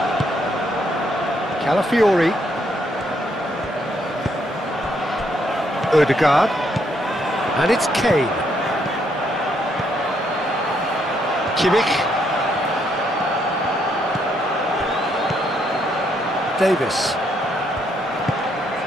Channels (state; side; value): normal; both; correlation 0.73